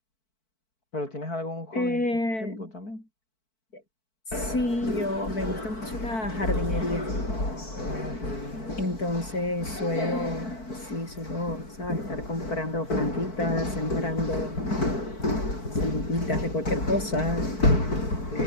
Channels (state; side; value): late; right; 4.5 ms